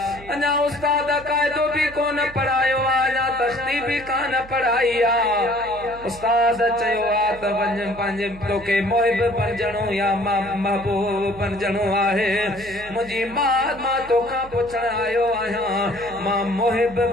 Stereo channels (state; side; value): noise; right; hum, 18 dB below the sound